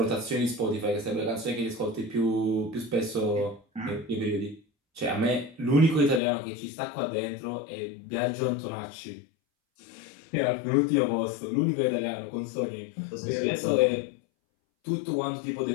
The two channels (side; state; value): right; drops out; at 6.2 s